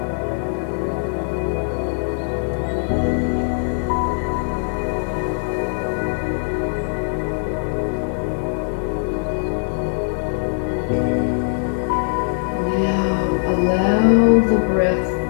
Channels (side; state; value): right; silent; 65 dB below the other